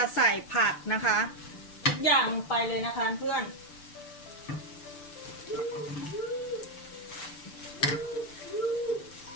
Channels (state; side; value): late; right; 6.8 ms